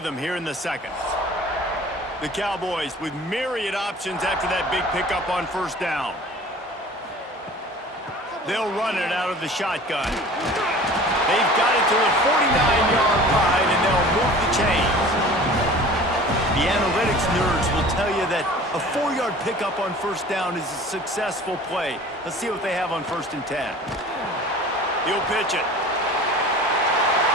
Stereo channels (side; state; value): both; normal; correlation 0.43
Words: here in the second. The Cowboys with myriad options after that big pickup on first down. They'll run it out of the shotgun. They've got it to the 49-yard line, and they'll move the chains. The analytics nerds will tell you that a 4-yard pickup on first down is a successful play. Let's see what they have on first and 10. He'll pitch it.